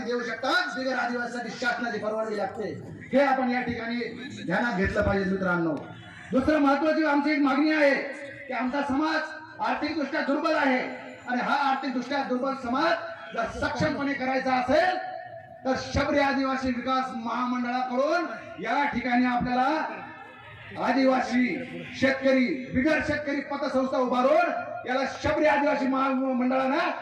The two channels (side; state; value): both; identical; correlation 1.00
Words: देऊ शकतात, बिगर आदिवासीसाठी शासनाची परवानगी लागते. हे आपण या ठिकाणी ध्यानात घेतलं पाहिजे मित्रांनो. दुसरं महत्वाची आमची एक मागणी आहे की आमचा समाज आर्थिकदृष्ट्या दुर्बल आहे, आणि हा आर्थिकदृष्ट्या दुर्बल समाज जर सक्षमपणे करायचा असेल तर शबरी आदिवासी विकास महामंडळाकडून या ठिकाणी आपल्याला आदिवासी शेतकरी बिगर शेतकरी पतसंस्था उभारून याला शबरी आदिवासी महामंडळानं